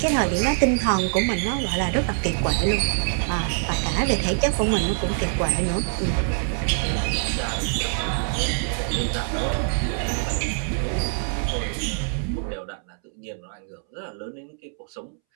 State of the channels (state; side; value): silent; left; 62 dB below the other